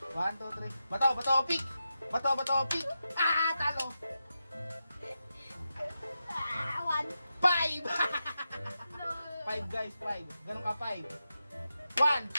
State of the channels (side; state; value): both; inverted; correlation -0.89